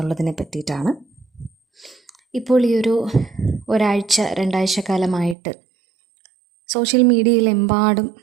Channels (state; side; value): drops out; left; at 5.4 s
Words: പറ്റിയിട്ടാണ്. ഇപ്പോൾ ഈ ഒരാഴ്ച 2 ആഴ്ച കാലമായിട്ട് സോഷ്യൽ മീഡിയയിലെമ്പാടും